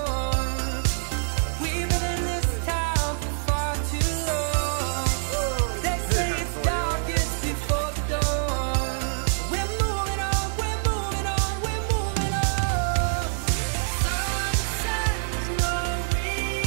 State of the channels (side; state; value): left; silent; 61 dB below the other